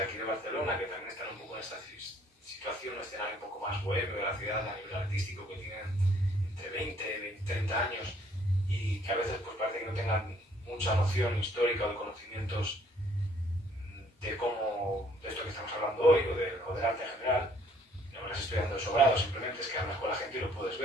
aquí de Barcelona, que también están un poco en esta situación, un escenario un poco más bohemio de la ciudad a nivel artístico, que tienen entre 20, 30 años, y que a veces pues parece que no tengan mucha noción histórica o de conocimientos de cómo, de esto que estamos hablando hoy, o del arte en general. No me lo estoy dando de sobrado, simplemente es que hablas con la gente y lo puedes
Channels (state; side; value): normal; both; correlation 0.62